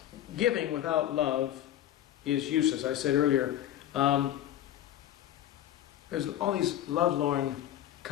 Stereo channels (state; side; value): quieter; right; 12.0 dB